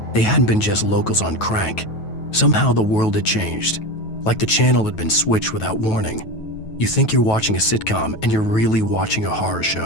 they hadn't been just locals on crank. Somehow the world had changed, like the channel had been switched without warning. You think you're watching a sitcom, and you're really watching a horror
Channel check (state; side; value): late; right; 9.2 ms